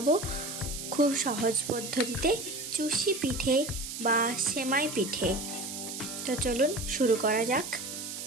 খুব সহজ পদ্ধতিতে চুষি পিঠে বা সেমাই পিঠে। তো চলুন শুরু করা যাক।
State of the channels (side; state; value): right; noise; hiss, 7 dB below the sound